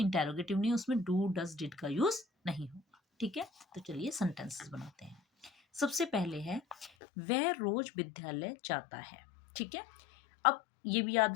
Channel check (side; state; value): right; drops out; at 6.9 s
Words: नहीं है, उसमें डू, डज, डिड का यूज नहीं होगा। ठीक है, तो चलिए सेंटेंसेस बनाते हैं। सबसे पहले है वह रोज विद्यालय जाता है। ठीक है, अब ये भी